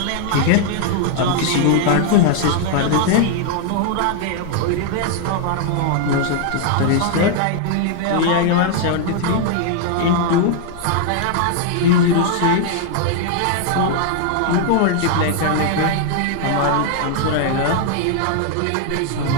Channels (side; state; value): both; different; correlation 0.00